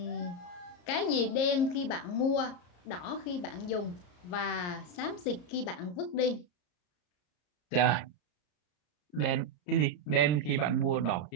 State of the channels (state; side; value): late; right; 34 ms